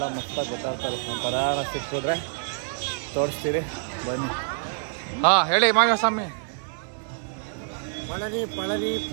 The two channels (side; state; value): left; silent; 61 dB below the other